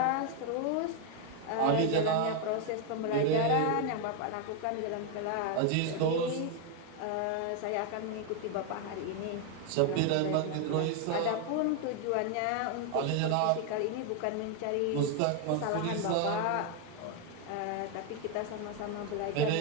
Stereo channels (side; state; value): both; different; correlation 0.01